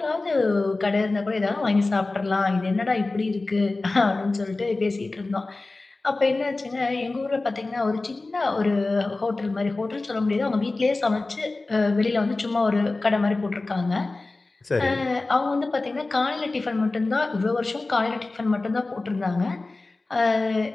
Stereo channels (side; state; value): right; quieter; 3.3 dB